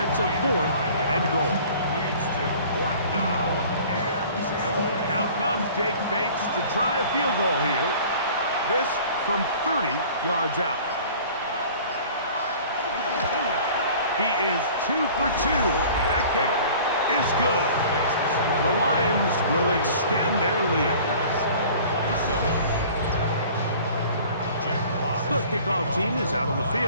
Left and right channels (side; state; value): both; inverted; correlation -0.46